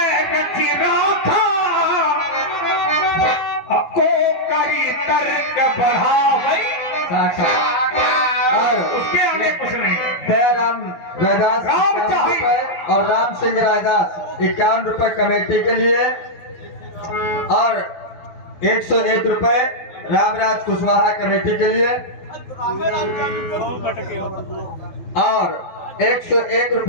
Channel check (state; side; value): late; right; 12 ms